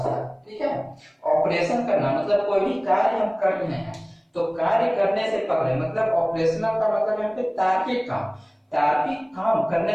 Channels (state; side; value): identical; both; correlation 1.00